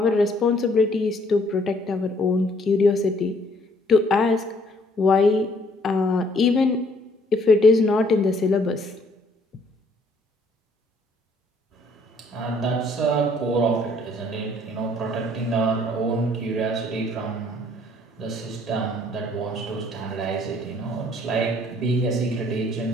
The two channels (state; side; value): normal; both; correlation 0.62